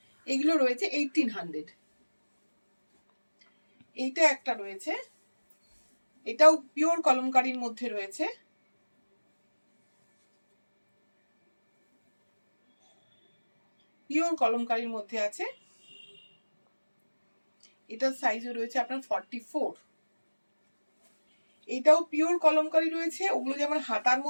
এগুলো রয়েছে 1800। এইটা একটা রয়েছে, এটাও পিওর কলমকারীর মধ্যে রয়েছে। পিওর কলমকারীর মধ্যে আছে। এটার সাইজও রয়েছে আপনার 44। এটাও পিওর কলমকারী রয়েছে। ওগুলো যেমন হাতার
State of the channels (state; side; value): inverted; both; correlation -1.00